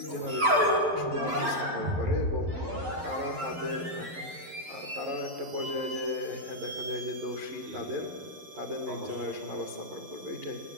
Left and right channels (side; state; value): left; late; 12 ms